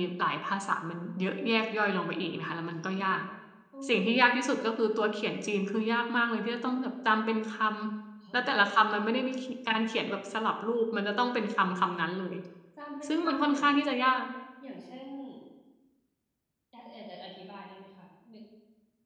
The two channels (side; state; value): both; identical; correlation 1.00